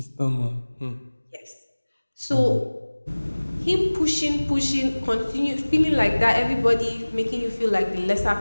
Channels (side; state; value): both; inverted; correlation -1.00